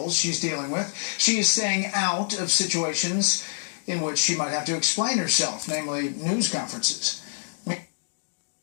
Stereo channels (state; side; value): silent; right; digital silence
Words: she's dealing with. She is staying out of situations in which she might have to explain herself, namely news conferences.